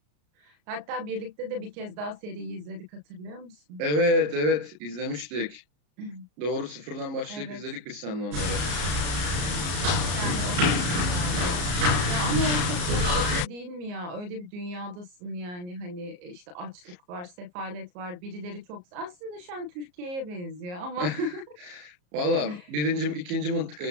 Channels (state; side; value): late; left; 34 ms